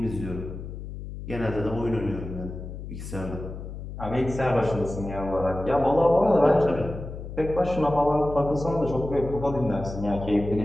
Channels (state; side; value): noise; left; hum, 9 dB below the sound